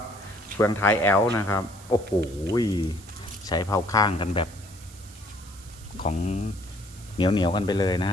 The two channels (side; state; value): right; noise; hiss, 21 dB below the sound